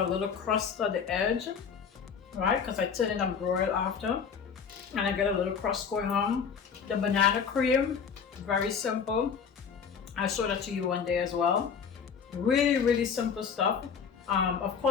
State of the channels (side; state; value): right; quieter; 6.5 dB